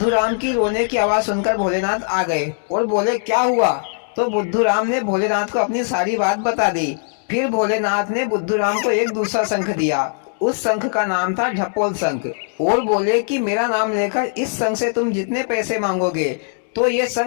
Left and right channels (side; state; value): right; silent; digital silence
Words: राम की रोने की आवाज सुनकर भोलेनाथ आ गए और बोले, क्या हुआ? तो बुद्धू राम ने भोलेनाथ को अपनी सारी बात बता दी। फिर भोलेनाथ ने बुद्धू राम को एक दूसरा शंख दिया। उस शंख का नाम था ढपोल शंख और बोले कि मेरा नाम लेकर इस शंख से तुम जितने पैसे मांगोगे तो ये